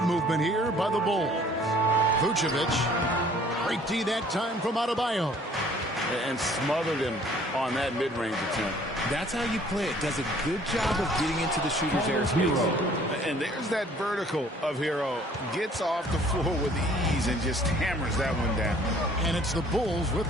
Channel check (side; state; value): both; normal; correlation 0.56